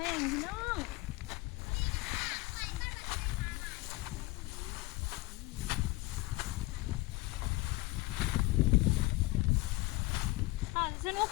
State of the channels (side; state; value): right; quieter; 21.8 dB